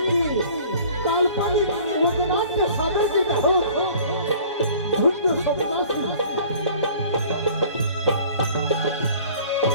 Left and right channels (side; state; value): both; inverted; correlation -0.49